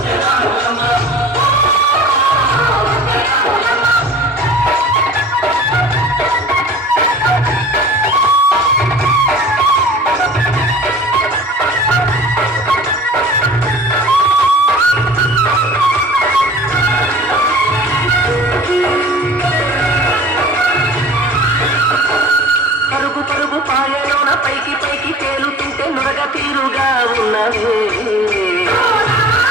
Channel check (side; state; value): both; normal; correlation 0.42